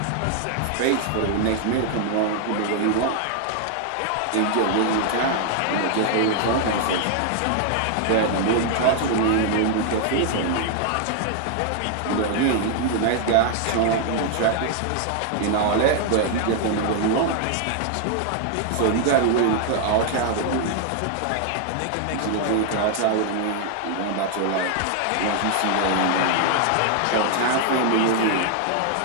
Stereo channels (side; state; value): both; different; correlation 0.00